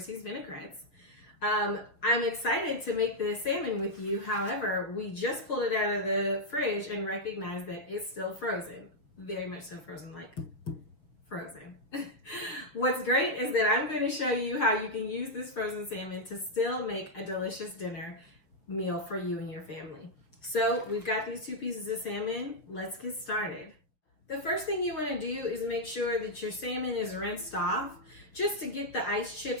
Vinaigrettes. I'm excited to make the salmon with you. However, we just pulled it out of the fridge and recognized that it's still frozen. Very much so frozen, like frozen. What's great is that I'm going to show you how you can use this frozen salmon to still make a delicious dinner meal for you and your family. So we've got these 2 pieces of salmon. Let's get started. The first thing you want to do is make sure that your salmon is rinsed off, just to get the ice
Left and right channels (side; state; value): right; late; 6.7 ms